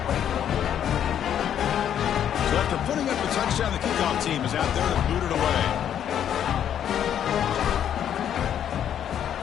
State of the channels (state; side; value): quieter; right; 9.7 dB